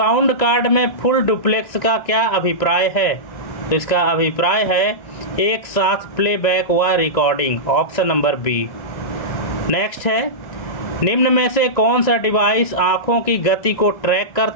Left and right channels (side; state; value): right; late; 2.0 ms